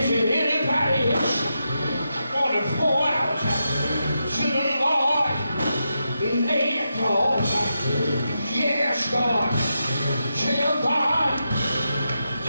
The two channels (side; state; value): both; inverted; correlation -0.87